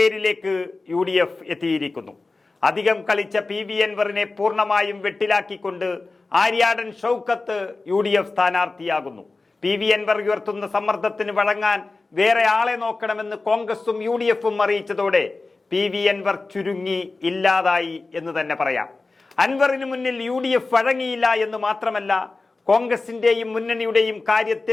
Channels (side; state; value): right; quieter; 3.6 dB